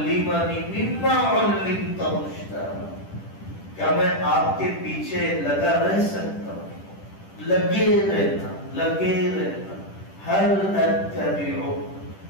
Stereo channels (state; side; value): late; right; 10 ms